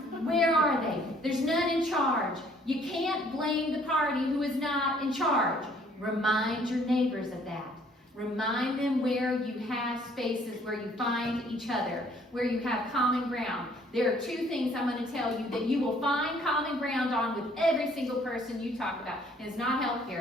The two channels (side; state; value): both; normal; correlation 0.60